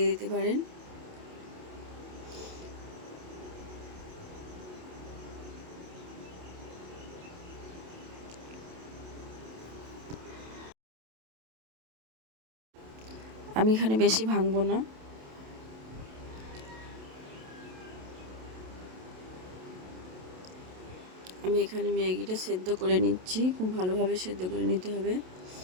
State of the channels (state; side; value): late; left; 27 ms